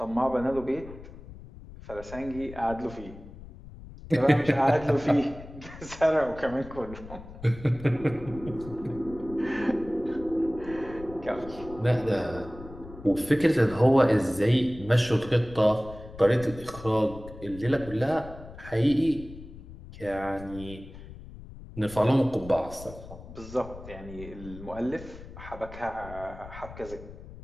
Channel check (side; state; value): left; noise; rumble, 15 dB below the sound